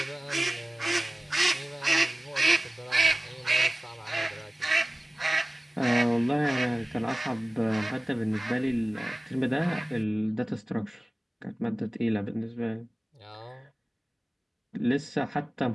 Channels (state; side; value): normal; both; correlation 0.97